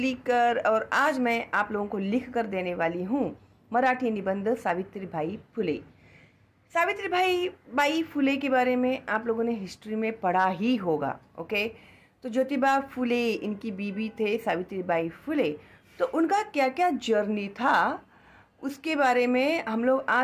और आज मैं आप लोगों को लिख कर देने वाली हूँ मराठी निबंध सावित्रीबाई फुले। सावित्रीबाई बाई फुले के बारे में आप लोगों ने हिस्ट्री में पढ़ा ही होगा। ओके, तो ज्योतिबा फुले इनकी बीबी थे सावित्रीबाई फुले। तो उनका क्या क्या जर्नी था उसके बारे में हम लोग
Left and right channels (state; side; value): identical; both; correlation 1.00